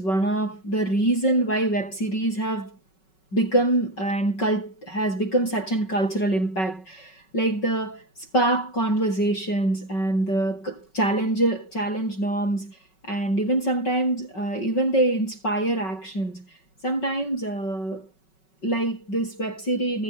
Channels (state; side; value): late; right; 5.3 ms